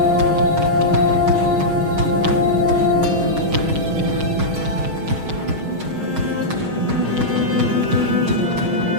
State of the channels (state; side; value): late; left; 6.4 ms